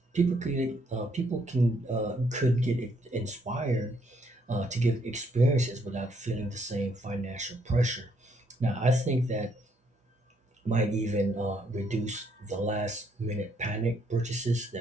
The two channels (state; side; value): normal; both; correlation 0.71